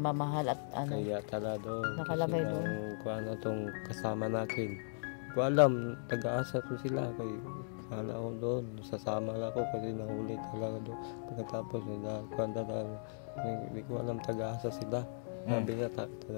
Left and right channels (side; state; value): right; silent; digital silence